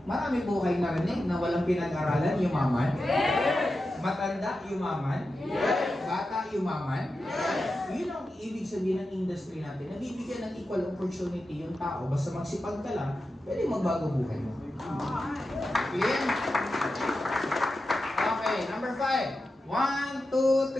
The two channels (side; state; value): both; normal; correlation 0.91